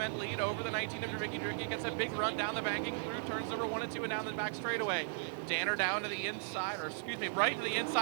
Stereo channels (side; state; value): left; silent; 53 dB below the other